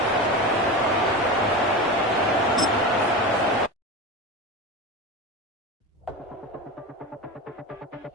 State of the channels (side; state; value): both; normal; correlation 0.25